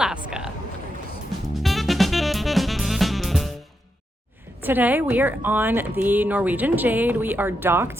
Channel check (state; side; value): normal; both; correlation 0.84